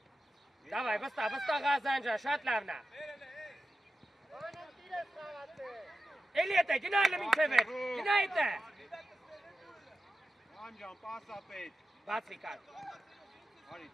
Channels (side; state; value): both; normal; correlation 0.91